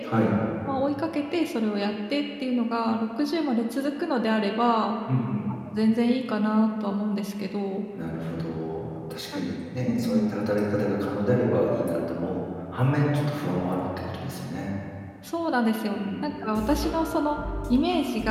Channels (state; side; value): identical; both; correlation 1.00